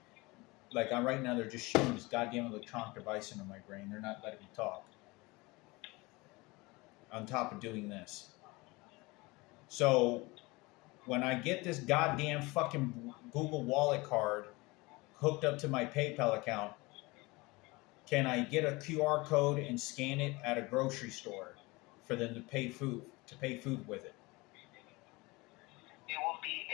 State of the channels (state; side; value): quieter; right; 23.7 dB